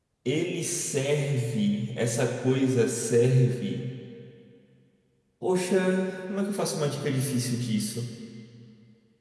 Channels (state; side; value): identical; both; correlation 1.00